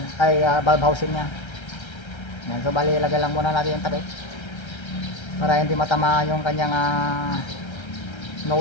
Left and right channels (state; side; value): late; right; 1.3 ms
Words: valve housing nya. Ayan. So bali ilagay lang muna natin yung takip para hindi matamaan yung kanyang